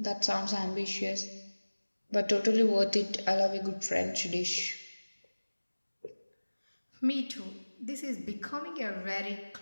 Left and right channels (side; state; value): both; inverted; correlation -1.00